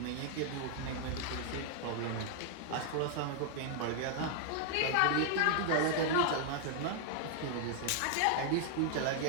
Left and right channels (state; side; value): different; both; correlation 0.00